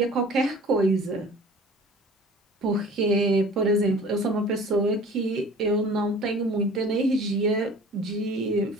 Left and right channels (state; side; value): normal; both; correlation 0.45